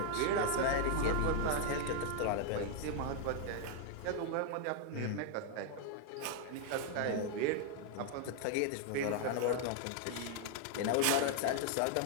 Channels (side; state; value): both; different; correlation 0.00